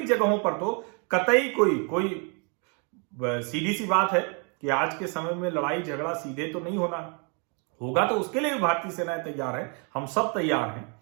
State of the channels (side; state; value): left; quieter; 36.6 dB